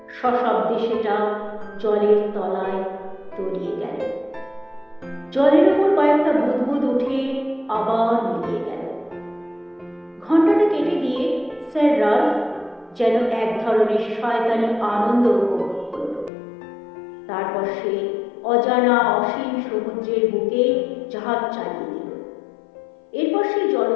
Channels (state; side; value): drops out; right; at 16.3 s